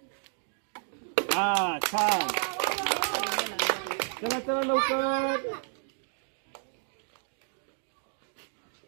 हा, छान. चला चला लवकर.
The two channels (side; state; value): left; silent; 57 dB below the other